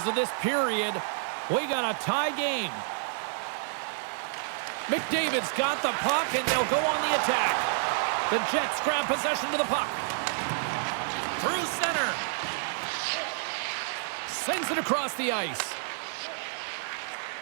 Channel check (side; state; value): left; silent; digital silence